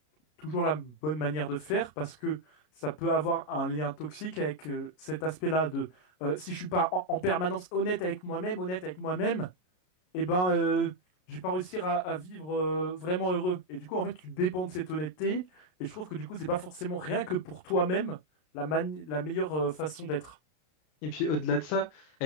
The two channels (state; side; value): late; right; 33 ms